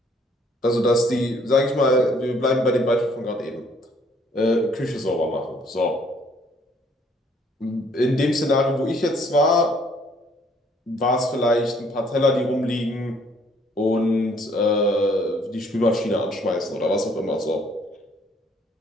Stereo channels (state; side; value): normal; both; correlation 0.63